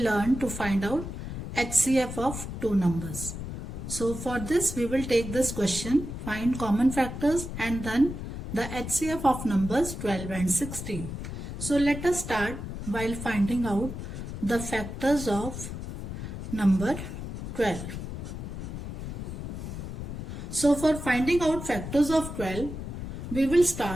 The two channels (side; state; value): left; noise; rumble, 7 dB below the sound